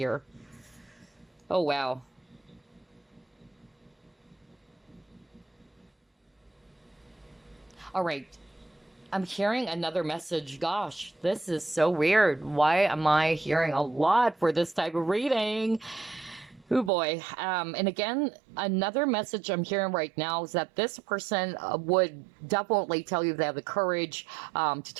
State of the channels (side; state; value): left; drops out; at 16.9 s